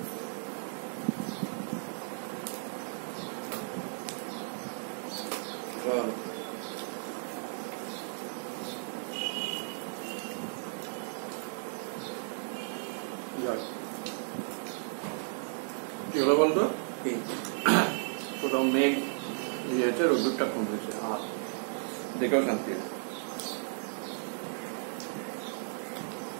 কি হলো বলতো? কোথাও মেঘ ইয়েছে, রোদ্দুরটা কমেছে, আর দেখেও শান্তি।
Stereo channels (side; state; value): left; silent; digital silence